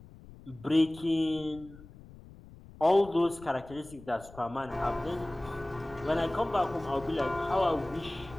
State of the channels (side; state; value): left; noise; rumble, 19 dB below the sound